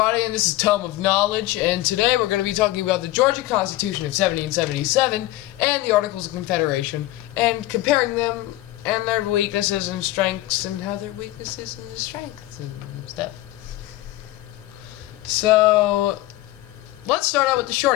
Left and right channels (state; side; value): quieter; right; 16.9 dB